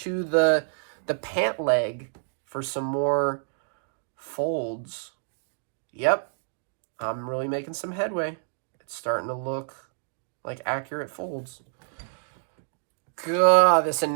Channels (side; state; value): left; silent; digital silence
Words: the pant leg for some more folds. Yep, I'm really making some headway. It's starting to look like accurate folds. God, this